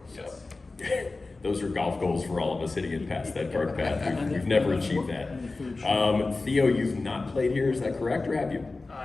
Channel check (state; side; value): quieter; right; 3.5 dB